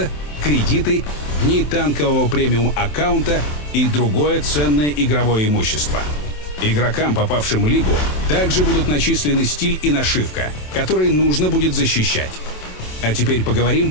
кредиты, дни танкового премиум аккаунта и другое ценное игровое имущество. Игрокам, попавшим в лигу, также будут начислены стиль и нашивка, которые нужно будет защищать. А теперь поговорим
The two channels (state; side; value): late; right; 27 ms